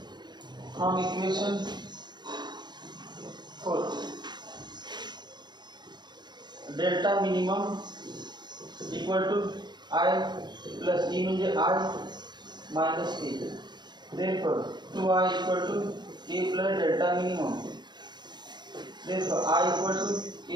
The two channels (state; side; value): late; left; 0.21 ms